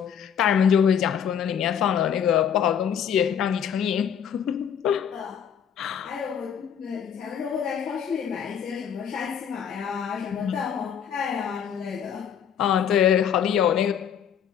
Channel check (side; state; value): right; quieter; 8.3 dB